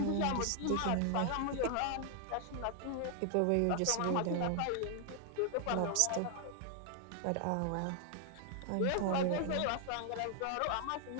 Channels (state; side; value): different; both; correlation 0.00